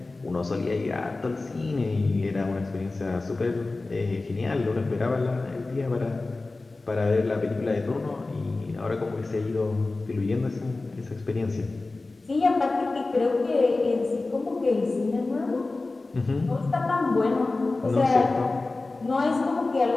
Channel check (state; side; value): quieter; right; 3.4 dB